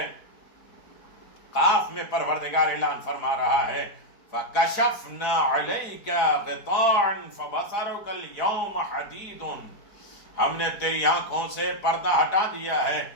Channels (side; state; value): right; late; 4.5 ms